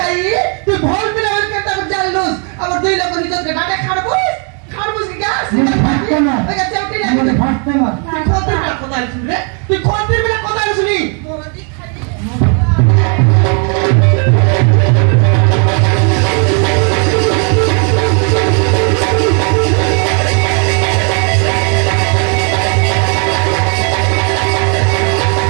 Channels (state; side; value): quieter; left; 39.2 dB